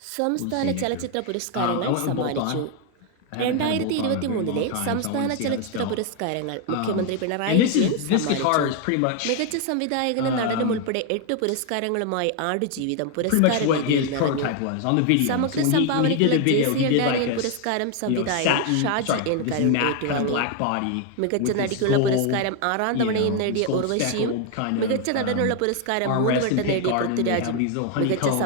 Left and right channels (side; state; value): both; different; correlation 0.01